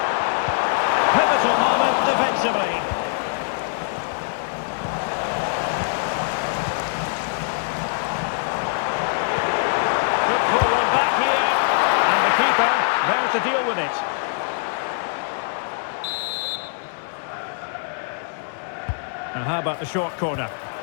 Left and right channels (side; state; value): right; silent; 63 dB below the other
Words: Pivotal moment defensively. Could pull one back here. And the keeper there to deal with it. Now how about the short corner?